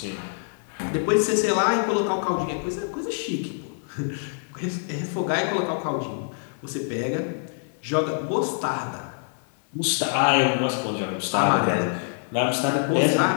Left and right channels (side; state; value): right; silent; 62 dB below the other